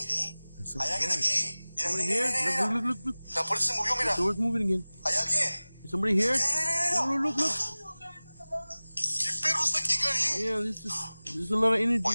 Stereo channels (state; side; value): inverted; both; correlation -0.99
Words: miré. I saw a Hay alguien hand. aquí. Mira, Somebody mira, here? mira, mira, mira. Look. La puerta se movió, mira. The door's moving again. ¿Hay alguien? Is somebody here? Mira, mira, mira. Look. ¿Qué perro está aquí, Gary? Yeah, there's a lot of